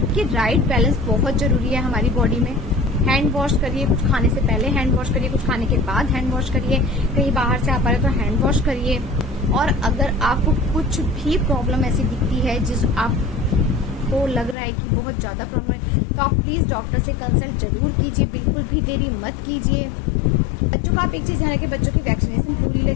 कि राइट बैलेंस बहुत जरूरी है हमारी बॉडी में। हैंड वॉश करिए, कुछ खाने से पहले हैंड वॉश करिए, कुछ खाने के बाद हैंड वॉश करिए। कहीं बाहर से आप आ रहे तो हैंड वॉश करिए। और अगर आपको कुछ भी प्रॉब्लम ऐसी दिखती है जिस आपको लग रहा है कि बहुत ज्यादा प्रॉब्लम है, तो आप प्लीज डॉक्टर से कंसल्ट जरूर कीजिए, बिल्कुल भी देरी मत कीजिए। बच्चों का आप एक चीज ध्यान रखिए, बच्चों की वैक्सीनेशन पूरी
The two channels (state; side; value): drops out; right; at 14.6 s